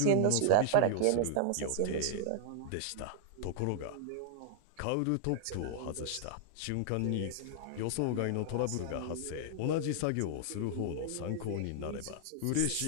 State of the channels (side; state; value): both; different; correlation -0.01